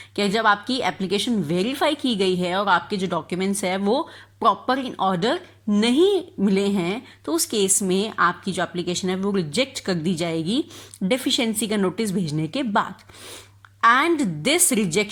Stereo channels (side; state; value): both; identical; correlation 1.00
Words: कि जब आपकी एप्लीकेशन वेरीफाई की गई है और आपके जो डॉक्यूमेंट्स है वो प्रॉपर इन ऑर्डर नहीं मिले हैं तो उस केस में आपकी जो एप्लीकेशन है वो रिजेक्ट कर दी जाएगी डेफिशिएंसी का नोटिस भेजने के बाद. And this